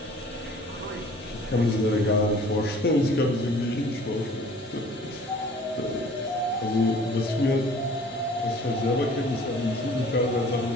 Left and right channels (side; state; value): both; normal; correlation 0.50